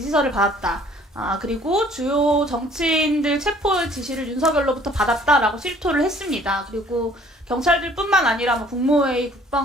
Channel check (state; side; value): normal; both; correlation 0.57